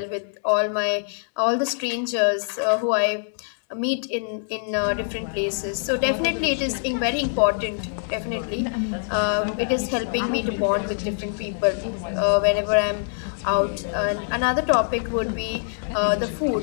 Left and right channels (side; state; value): right; silent; 63 dB below the other